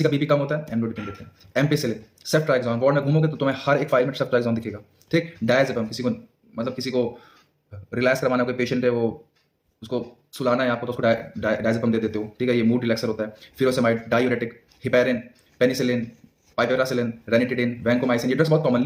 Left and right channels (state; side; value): identical; both; correlation 1.00